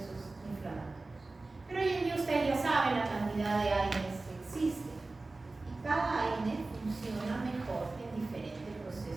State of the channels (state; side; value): quieter; left; 3.3 dB